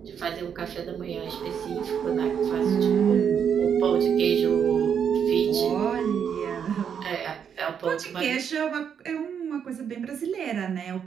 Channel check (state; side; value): quieter; left; 7.7 dB